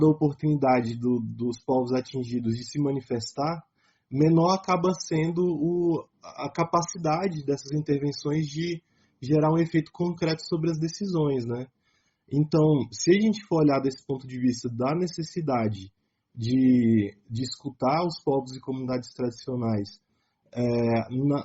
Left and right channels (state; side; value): identical; both; correlation 1.00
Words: a oportunidade dos povos atingidos de se manifestar, menor acaba sendo a capacidade dessas intervenções de gerar um efeito concreto sobre as decisões, né? Então, se a gente for olhar desse ponto de vista da necessidade de escutar os povos e comunidades tradicionais